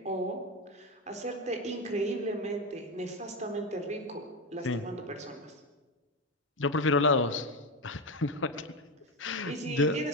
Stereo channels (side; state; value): both; normal; correlation 0.14